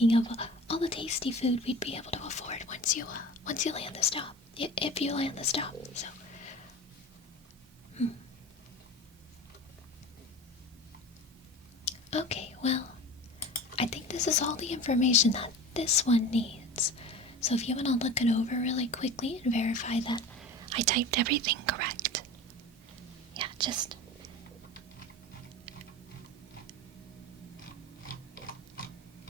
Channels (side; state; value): both; normal; correlation 0.34